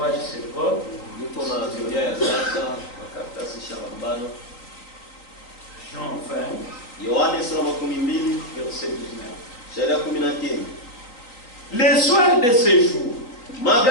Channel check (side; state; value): right; late; 3.9 ms